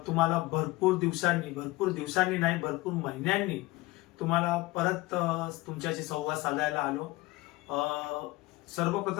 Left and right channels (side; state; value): right; quieter; 20.5 dB